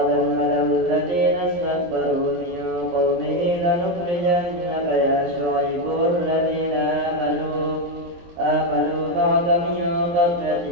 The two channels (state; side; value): late; left; 23 ms